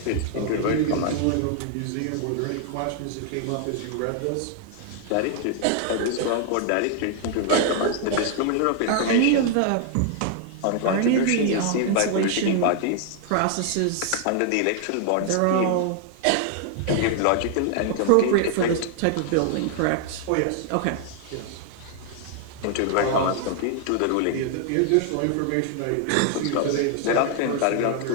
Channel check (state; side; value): different; both; correlation 0.00